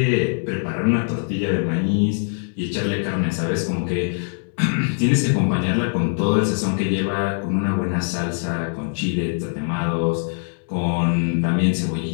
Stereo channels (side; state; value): right; silent; 64 dB below the other